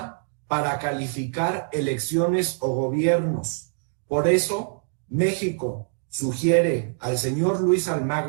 para calificar elecciones o gobiernos. Por eso, México sugiere al señor Luis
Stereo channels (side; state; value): left; silent; digital silence